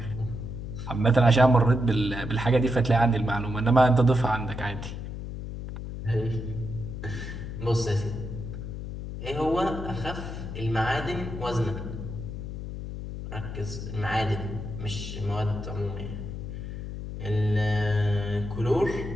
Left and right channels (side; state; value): left; noise; hum, 7 dB below the sound